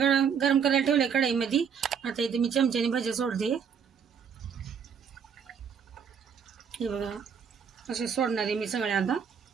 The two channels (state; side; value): quieter; left; 7.1 dB